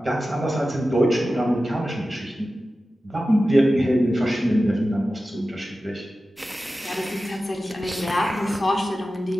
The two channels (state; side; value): normal; both; correlation 0.94